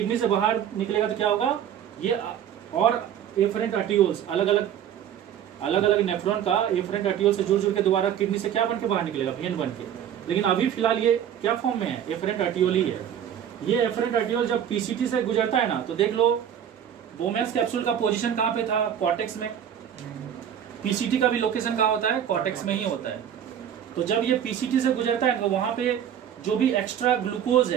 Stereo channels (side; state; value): left; quieter; 9.5 dB